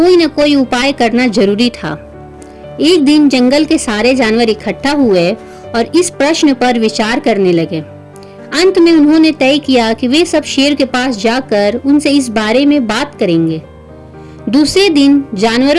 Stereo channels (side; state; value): both; identical; correlation 1.00